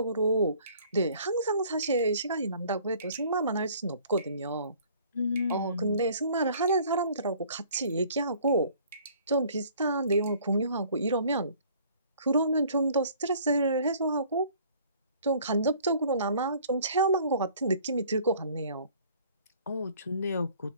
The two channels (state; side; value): inverted; both; correlation -0.55